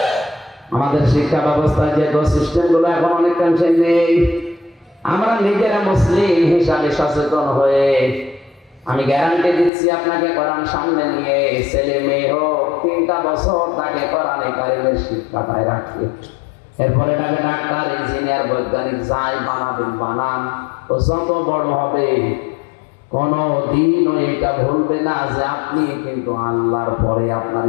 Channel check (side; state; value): right; drops out; at 9.7 s